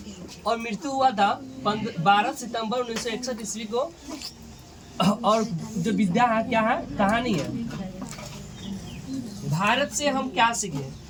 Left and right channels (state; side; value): identical; both; correlation 1.00